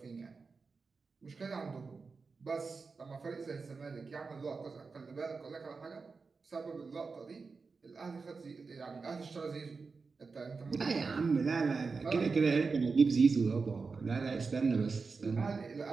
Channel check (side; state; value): left; quieter; 4.6 dB